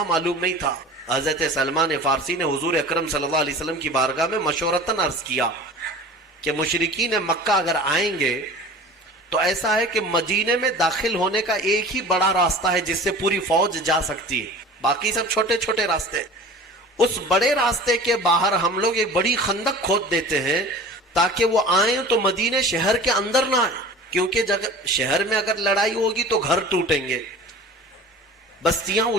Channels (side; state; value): both; normal; correlation 0.40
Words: معلوم نہیں تھا. حضرت سلمان فارسی نے حضور اکرم صلی اللہ علیہ وسلم کی بارگاہ میں مشورتاً عرض کیا کہ مشرکین مکہ اگر آئیں گے تو ایسا ہے کہ مدینے میں داخل ہونے کا ایک ہی بڑا راستہ ہے جس سے پوری فوج جا سکتی ہے، باقی سب چھوٹے چھوٹے راستے. اس بڑے راستے کے باہر ہم لوگ ایک بڑی خندق کھود دیتے ہیں تاکہ وہ آئیں تو مدینے شہر کے اندر نہ آئیں، کیونکہ شہر میں اگر لڑائی ہوگی تو گھر ٹوٹیں گے، بستیاں